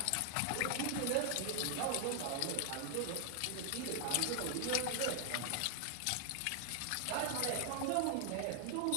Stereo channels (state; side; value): different; both; correlation 0.00